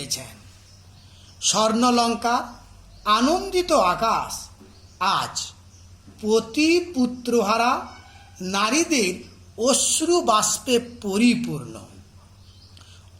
স্বর্ণলঙ্কা আনন্দিত আকাশ আজ পতি পুত্রহারা নারীদের অশ্রু বাষ্পে পরিপূর্ণ।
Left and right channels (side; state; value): both; identical; correlation 1.00